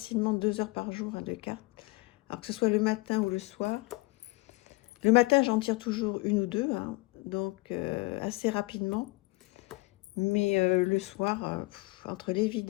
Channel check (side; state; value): right; quieter; 23.6 dB